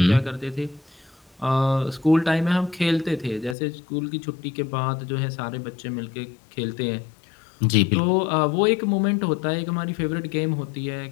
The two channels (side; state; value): right; drops out; at 3.6 s